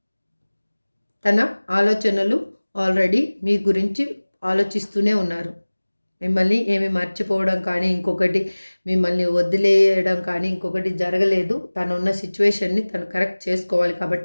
తన ఆలోచనలు ఆల్రెడీ మీ గురించి ఆలోచిస్తూనే ఉన్నారు. మిమ్మల్ని ఏమి మర్చిపోవడం కానీ, ఇంకొకటి మిమ్మల్ని వదిలేయడం కానీ ఇంకొకటి జరగలేదు. తను ఉన్న సిచ్యువేషన్ని తను కరెక్ట్ చేసుకోవాలి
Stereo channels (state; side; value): inverted; both; correlation -1.00